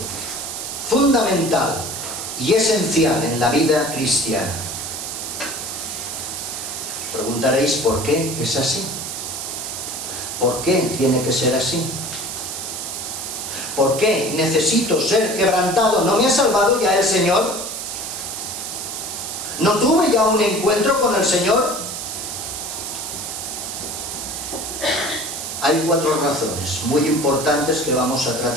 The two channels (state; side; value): noise; right; hiss, 6 dB below the sound